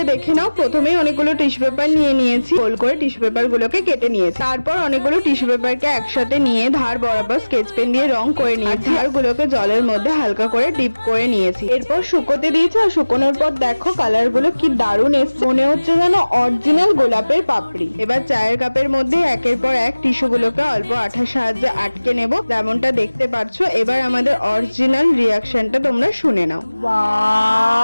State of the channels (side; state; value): both; inverted; correlation -1.00